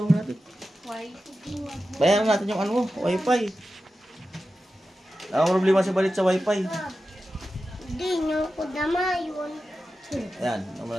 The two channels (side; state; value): both; normal; correlation 0.92